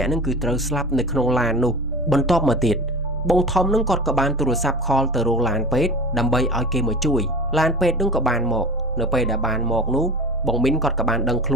ាក់នឹងគឺត្រូវស្លាប់នៅក្នុងឡាននោះបន្ទាប់មកទៀតបងធំនឹងគាត់ក៏បានទូរស័ព្ទខលទៅរកឡានពេទ្យដើម្បីឲ្យគេមកជួយឡានពេទ្យនឹងក៏បានមកនៅពេលដែលបានមកនោះបងមីនគាត់ក៏បានដឹងខ្ល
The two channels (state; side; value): normal; both; correlation 0.34